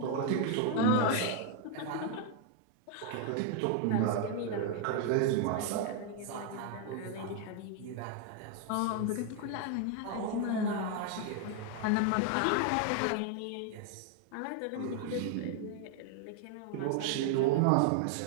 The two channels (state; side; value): different; both; correlation 0.00